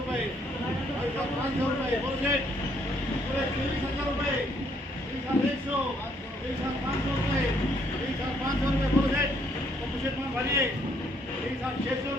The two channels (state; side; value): normal; both; correlation 0.68